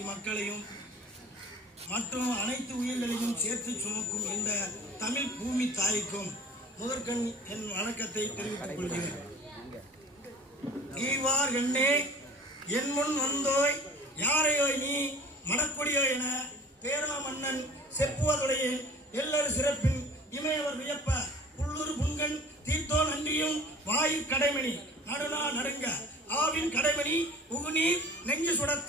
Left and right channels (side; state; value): both; normal; correlation 0.44